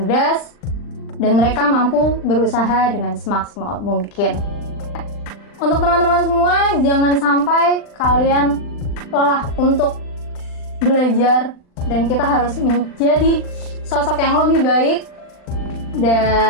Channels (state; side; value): late; right; 39 ms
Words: dan mereka mampu berusaha dengan semaksimal mungkin. Untuk teman-teman semua, jangan sampai kalian lelah untuk belajar, dan kita harus menjadi sosok yang lebih baik